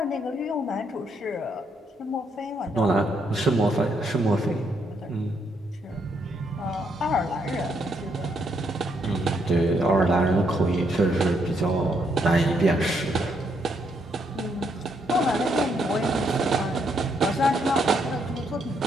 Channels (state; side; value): normal; both; correlation 0.75